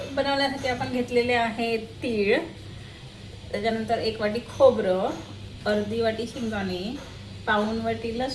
बनवण्यासाठी आपण घेतलेले आहे तीळ, त्याच्यानंतर 1 वाटी खोबरं, अर्धी वाटी शेंगदाणे, पाऊण वाटी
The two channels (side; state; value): both; identical; correlation 1.00